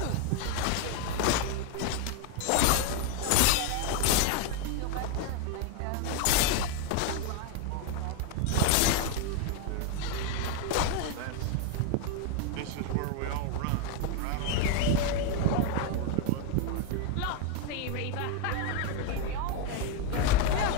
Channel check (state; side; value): different; both; correlation 0.01